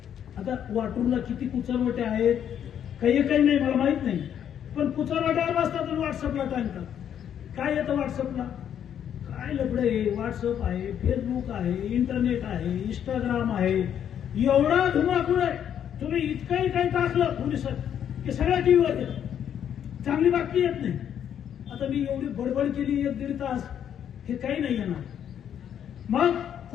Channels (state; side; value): quieter; right; 9.3 dB